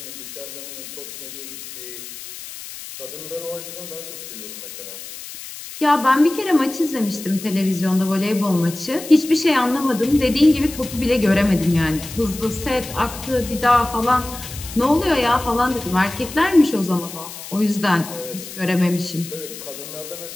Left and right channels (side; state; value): left; noise; hiss, 12 dB below the sound